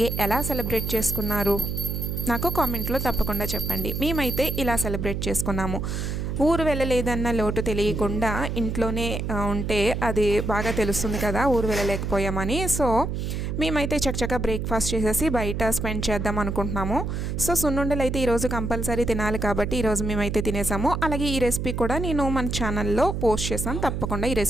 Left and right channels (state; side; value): noise; right; hum, 3 dB below the sound